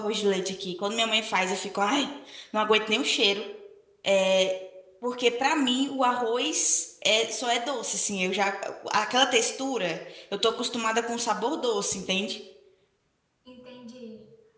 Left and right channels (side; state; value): both; identical; correlation 1.00